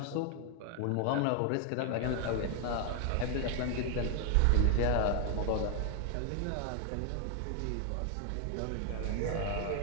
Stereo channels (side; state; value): both; different; correlation 0.00